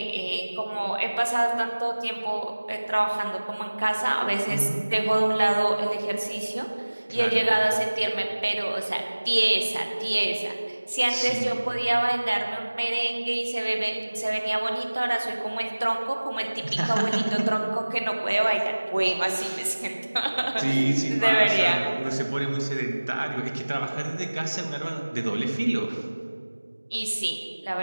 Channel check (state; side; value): inverted; both; correlation -1.00